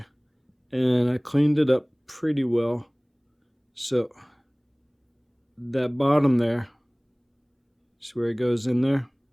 And I cleaned it up pretty well. So that bottom there, see where it goes in there?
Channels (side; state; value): both; identical; correlation 1.00